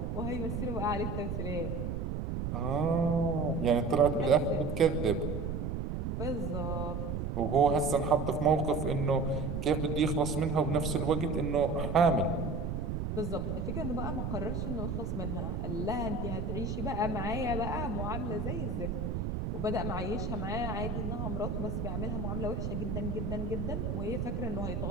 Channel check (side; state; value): right; noise; rumble, 2 dB below the sound